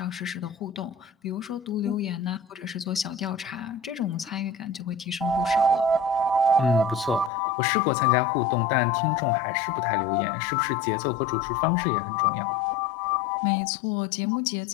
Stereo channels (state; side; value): drops out; right; at 7.3 s